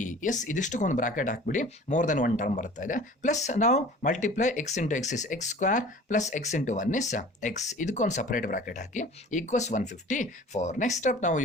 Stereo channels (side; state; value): both; normal; correlation 0.44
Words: Yes, ಇದಿಷ್ಟಕ್ಕೊಂದು ಬ್ರಾಕೆಟ್ ಹಾಕ್ಬಿಡಿ. ಮೋರ್ ದೆನ್ ಒನ್ ಟರ್ಮ್ ಬರ್ತಾ ಇದೆ. Plus ನಾವು multiply x × x is x² plus x × 1 is x. ಇದಕ್ಕೊಂದು separate bracket hockey equals 154. Next step, now